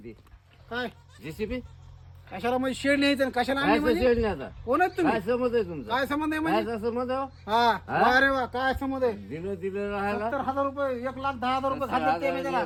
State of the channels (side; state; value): both; identical; correlation 1.00